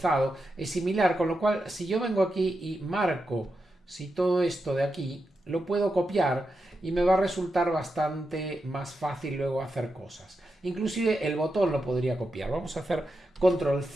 es similar, con lo cual si yo vengo aquí y marco si todo esto de aquí, lo puedo copiar y me va a resultar bastante más fácil luego hacer cosas. Inclusive el botón lo podría copiar. Vamos a hacer control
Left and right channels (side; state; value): both; normal; correlation 0.87